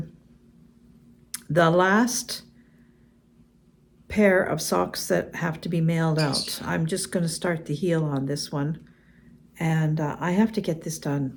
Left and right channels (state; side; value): identical; both; correlation 1.00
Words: the last pair of socks that have to be mailed out. I'm just going to start the heel on this one. And I have to get this done